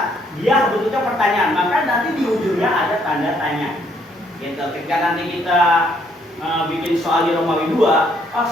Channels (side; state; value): both; normal; correlation 0.68